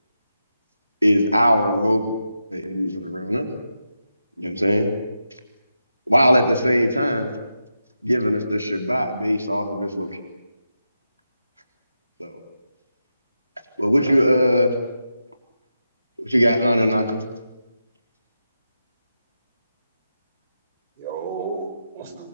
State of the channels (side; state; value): both; inverted; correlation -0.88